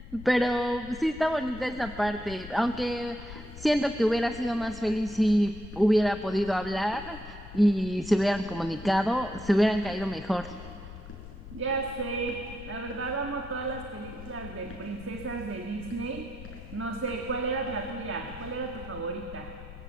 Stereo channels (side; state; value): left; noise; rumble, 14 dB below the sound